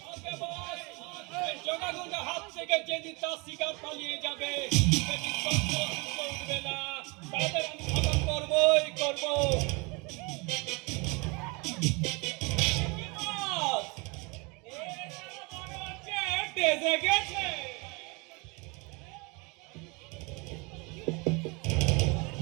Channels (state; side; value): quieter; left; 28.9 dB